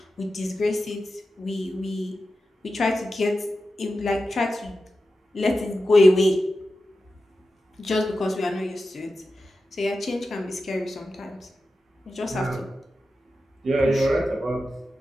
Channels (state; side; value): normal; both; correlation 0.91